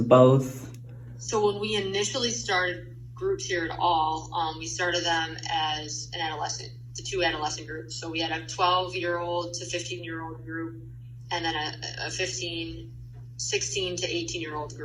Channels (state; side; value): identical; both; correlation 1.00